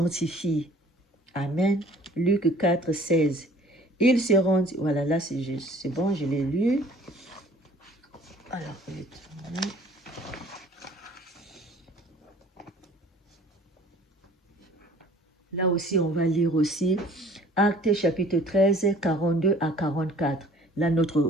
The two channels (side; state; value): both; normal; correlation 0.52